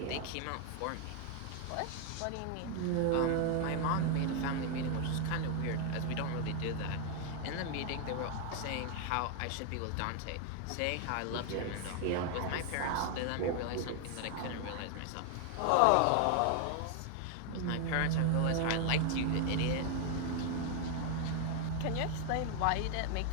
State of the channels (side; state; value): both; different; correlation 0.00